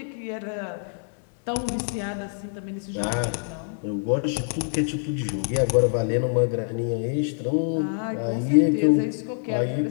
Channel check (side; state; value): right; silent; digital silence